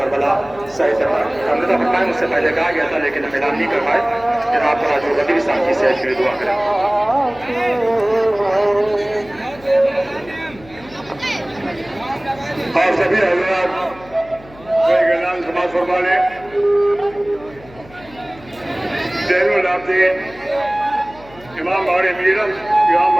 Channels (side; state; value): left; noise; hum, 22 dB below the sound